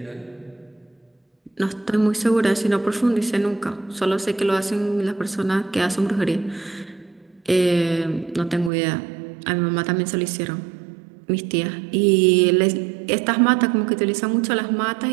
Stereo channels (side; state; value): left; drops out; at 8.7 s